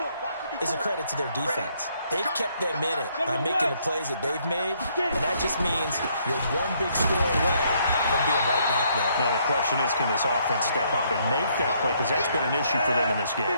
is a credit to their defense. They've kept them in it by making the plays that they've made, and that just means you're one big score away from being right back there. Now, the question is, can this offense step up and make that play? Because that's been an issue for them in this game.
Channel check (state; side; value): inverted; both; correlation -0.69